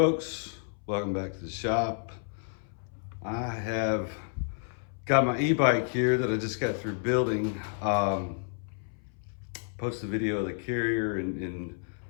welcome back to the shop. I have got my e-bike here that I just got through building. Posted a video of the carrier and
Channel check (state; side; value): silent; right; 58 dB below the other